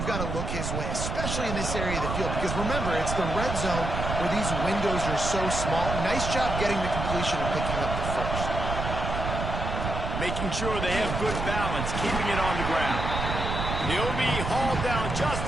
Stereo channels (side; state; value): right; noise; rumble, 3 dB below the sound